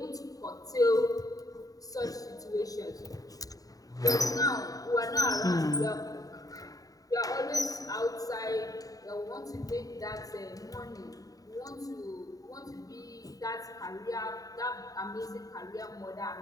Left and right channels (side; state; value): right; late; 0.18 ms